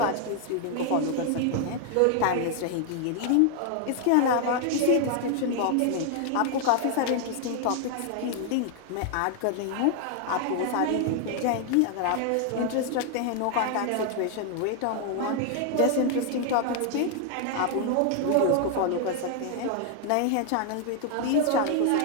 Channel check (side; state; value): both; different; correlation 0.00